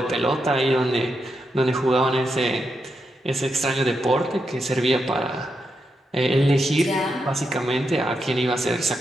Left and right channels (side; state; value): both; normal; correlation 0.84